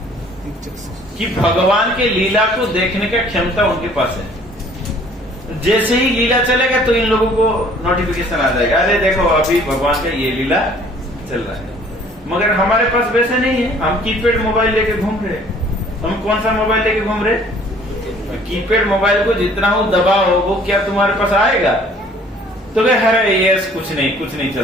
कि भगवान के लीला को देखने का क्षमता उनके पास है। जैसे ही लीला चलेगा तो इन लोगों को नोटिफिकेशन आ जाएगा, अरे देखो अभी भगवान का ये लीला चल रहा है। मगर हमारे पास वैसे नहीं है, हम कीपैड मोबाइल लेके घूम रहे। हम कौन सा मोबाइल लेके घूम रहे? कीपैड मोबाइल को जितना हो दबाओ वो क्या तुम्हारे पास आएगा? तो वे अरे ये कुछ नहीं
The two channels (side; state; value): both; normal; correlation 0.55